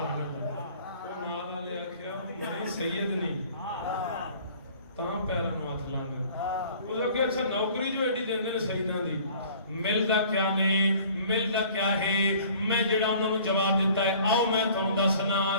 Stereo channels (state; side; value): inverted; both; correlation -0.51